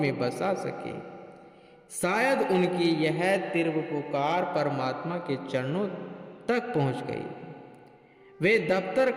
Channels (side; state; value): both; identical; correlation 1.00